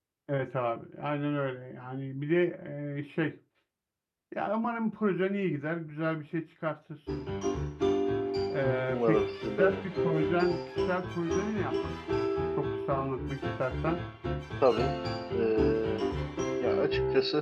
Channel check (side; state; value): both; identical; correlation 1.00